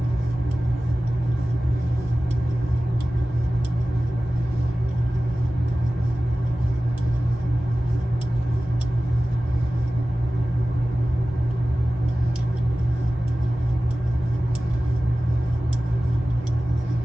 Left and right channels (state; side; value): normal; both; correlation 0.96